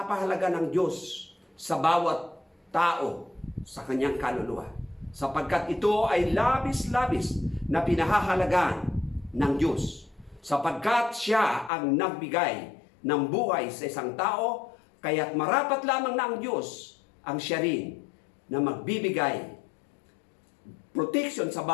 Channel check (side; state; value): right; drops out; at 11.7 s